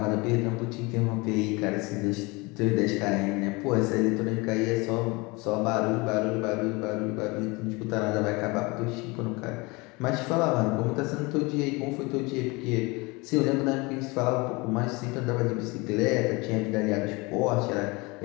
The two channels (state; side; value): quieter; right; 25.6 dB